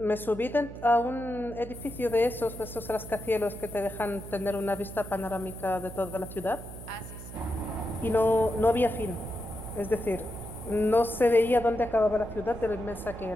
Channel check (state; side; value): noise; right; hum, 13 dB below the sound